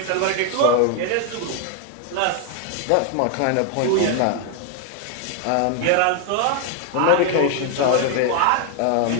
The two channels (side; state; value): both; different; correlation 0.00